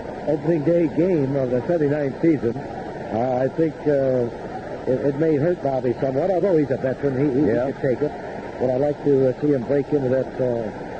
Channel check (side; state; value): both; identical; correlation 1.00